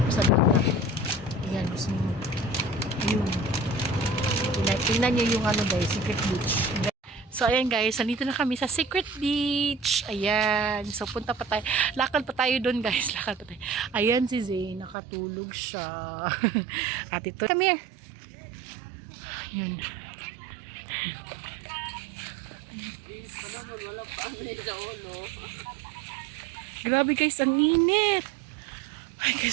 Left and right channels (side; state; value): left; drops out; at 15.0 s